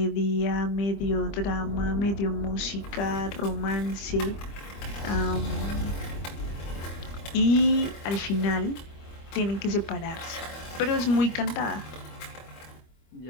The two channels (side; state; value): right; late; 25 ms